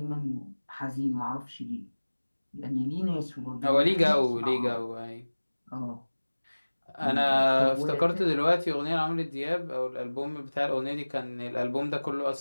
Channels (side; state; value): both; inverted; correlation -1.00